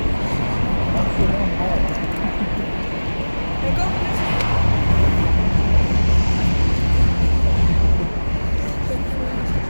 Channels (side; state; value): both; inverted; correlation -1.00